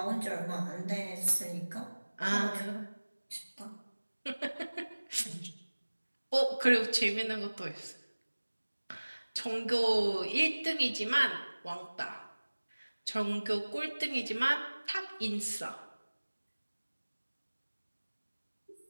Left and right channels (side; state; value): both; inverted; correlation -1.00